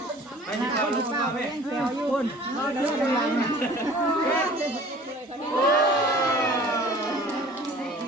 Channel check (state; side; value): normal; both; correlation 0.47